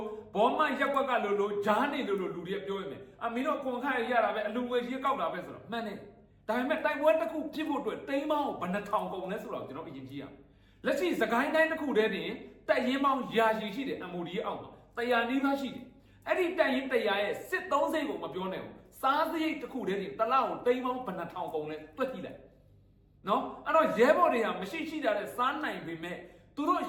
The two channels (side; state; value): both; identical; correlation 1.00